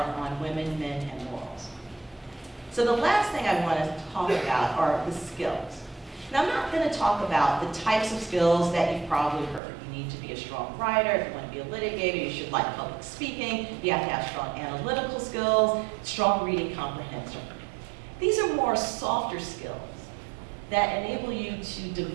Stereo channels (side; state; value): left; drops out; at 9.6 s